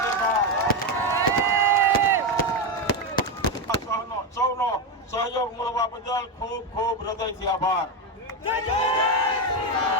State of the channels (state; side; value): normal; both; correlation 0.10